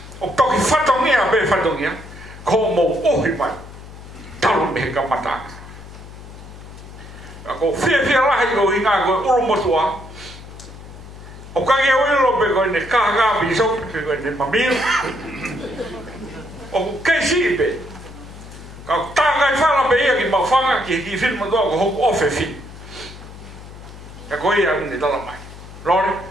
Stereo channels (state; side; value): noise; left; hum, 16 dB below the sound